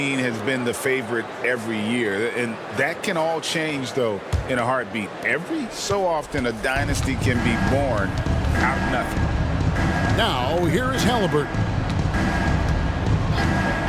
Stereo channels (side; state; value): both; identical; correlation 1.00